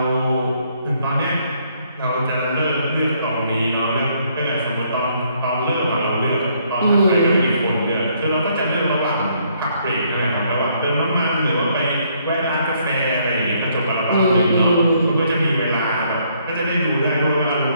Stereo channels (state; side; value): inverted; both; correlation -0.69